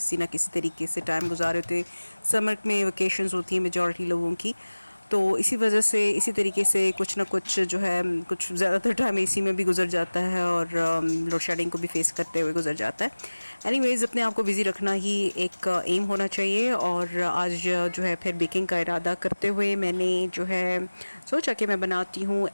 ना किसी तरीके से टाइम गुजारे होते हैं। समर में वेकेशंस होती हैं मेजॉरिटी लोगों की, तो इसी वजह से इसी तरीके से कुछ ना कुछ जो है कुछ ज़्यादातर टाइम एसी में भी गुजर जाता है और लोड शेडिंग को भी फेस करते हुए गुजर जाता है। एनीवेज़, अपने आप को बिज़ी रखना ही एक एम होना चाहिए। और आज जो है फिर बेकिंग का इरादा करते हुए मैंने जो है सोचा कि मैं बनाती हूँ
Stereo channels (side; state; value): both; inverted; correlation -1.00